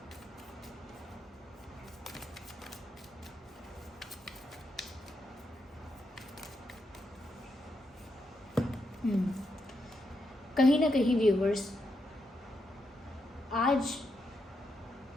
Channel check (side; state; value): both; normal; correlation 0.82